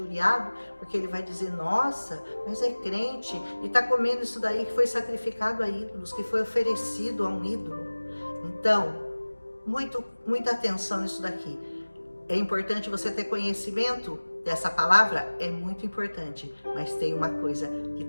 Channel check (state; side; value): inverted; both; correlation -1.00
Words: porque ele vai dizer, nossa, mas é crente e está comendo isso daí que foi sacrificado a ídolos, que foi oferecido a um ídolo. Então, muita atenção nisso daqui. É importante você ter conhecimento dessa palavra, é muito importante, mas tem uma coisa que